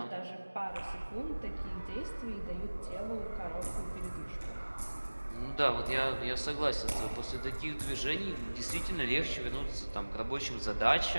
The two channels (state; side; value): inverted; both; correlation -1.00